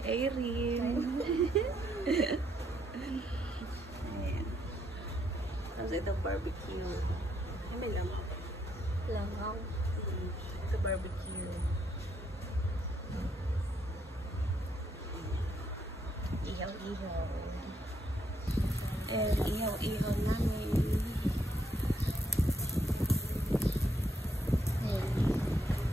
Irene. Ayan. Tapos ito barbecue. Ay, may lamang. Langaw. Ito barbecue. Ihaw-ihaw. And ihaw-ihaw namin. Ayan.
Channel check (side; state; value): both; normal; correlation 0.74